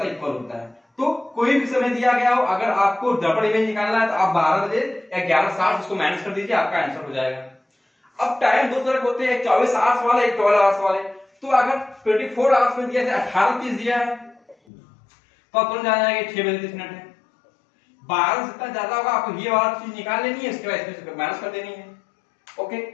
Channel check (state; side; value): drops out; right; at 14.6 s